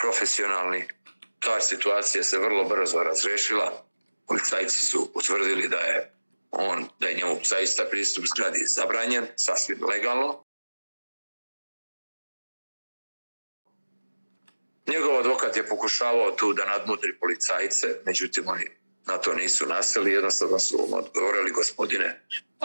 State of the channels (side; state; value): both; inverted; correlation -1.00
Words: Ta situacija se vrlo brzo razrešila. Policajci su utvrdili da je njemu zaista pristup zgradi zabranjen, sasvim legalno. Njegov advokat je pokušavao tu da nadmudri policajce, međutim oni na to nisu naseli, jednostavno su mu odgovorili: gospodine,